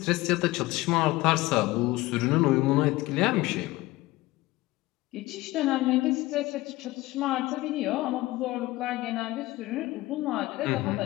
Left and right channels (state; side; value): quieter; right; 19.1 dB